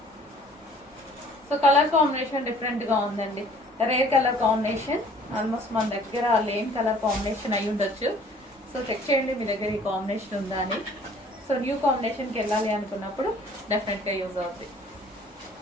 సో కలర్ కాంబినేషన్ డిఫరెంట్గా ఉందండి. రేర్ కలర్ కాంబినేషన్, ఆల్మోస్ట్ మన దగ్గర లేని కలర్ కాంబినేషన్ అయి ఉండొచ్చు. సో చెక్ చేయండి మీ దగ్గర ఈ కాంబినేషన్ ఉందా అని. సో న్యూ కాంబినేషన్కి వెళ్ళాలి అనుకున్నప్పుడు డెఫినెట్గా యూజ్ అవుతుంది.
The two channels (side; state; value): both; normal; correlation 0.54